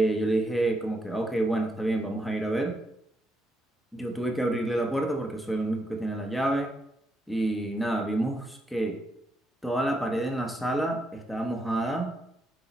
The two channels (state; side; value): normal; both; correlation 0.80